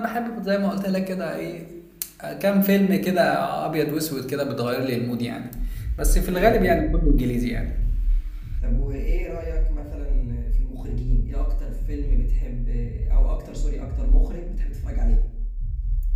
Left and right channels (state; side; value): identical; both; correlation 1.00